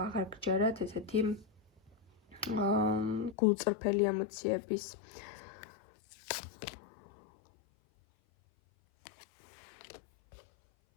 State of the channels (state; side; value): drops out; right; at 3.4 s